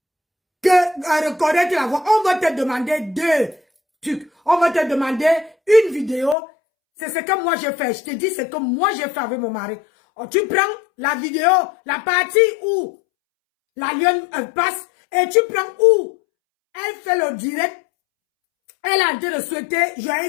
Reconnaître la voix. On va te demander 2 trucs. On va te demander une vidéo. C'est ce que moi j'ai fait. Je te dis ce que moi j'ai fait avec mon mari. Oh, tu prends la vidéo, la partie où la lionne passe, et tu prends où elle fait le direct. Elle a dit de souhaiter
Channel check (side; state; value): right; drops out; at 6.4 s